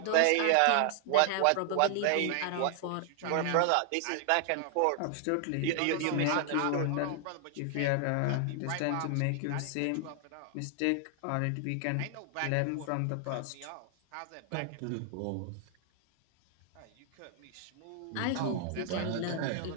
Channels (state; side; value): different; both; correlation 0.00